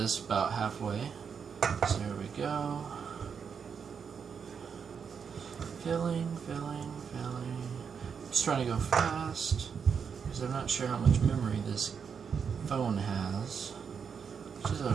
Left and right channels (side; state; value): left; quieter; 6.6 dB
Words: about halfway. So here we go. Filling, filling, filling. Just trying to go fast because I'm not sure how much memory this phone has, which is